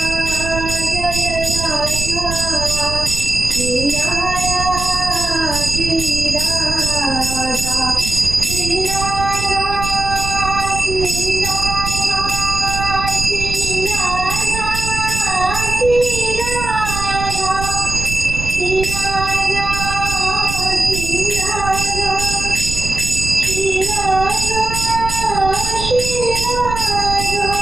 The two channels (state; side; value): noise; right; rumble, 6 dB below the sound